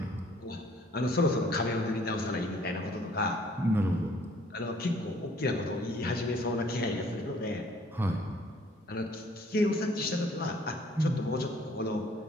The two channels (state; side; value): normal; both; correlation 0.59